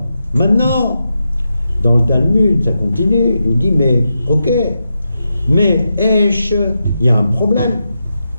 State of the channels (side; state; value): both; inverted; correlation -0.87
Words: maintenant, dans le Talmud, ça continue, il dit, mais ok, mais Esh, il y a un problème.